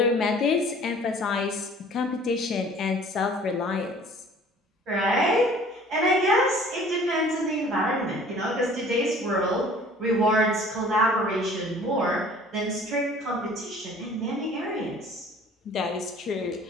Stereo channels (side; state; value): both; normal; correlation 0.50